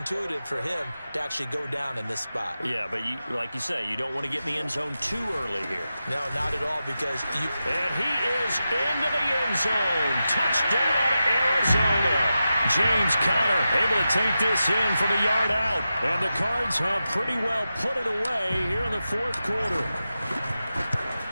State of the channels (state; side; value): inverted; both; correlation -0.91